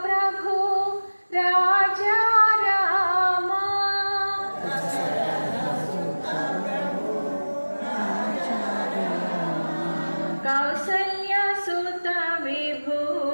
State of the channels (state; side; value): inverted; both; correlation -1.00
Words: प्रभु राजा रामा कौसल्या सुत विभु